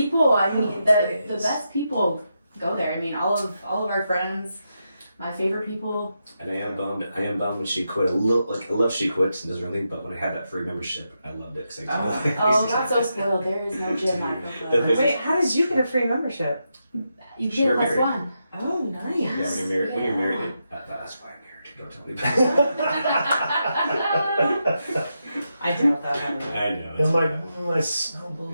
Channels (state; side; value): inverted; both; correlation -0.85